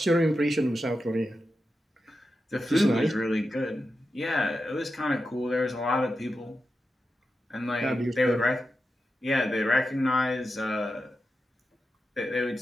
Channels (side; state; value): both; normal; correlation 0.90